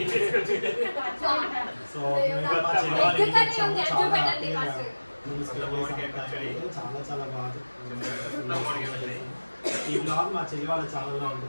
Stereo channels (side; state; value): both; inverted; correlation -1.00